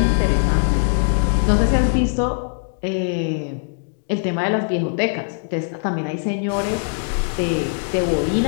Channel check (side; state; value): right; silent; digital silence